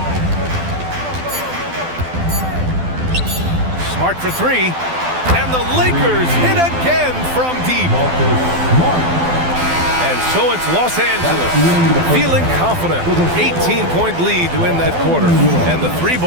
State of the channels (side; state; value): left; late; 12 ms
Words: Smart for 3. And the Lakers hit again from deep. And so it's Los Angeles feeling confident. 18-point lead to win that quarter. And the 3